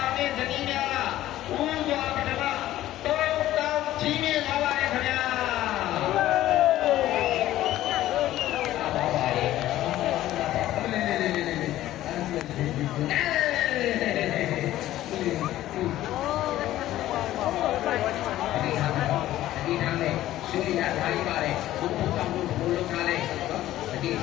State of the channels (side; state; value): right; quieter; 14.2 dB